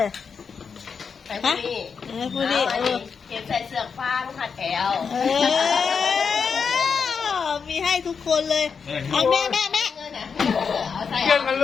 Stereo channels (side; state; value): right; quieter; 5.9 dB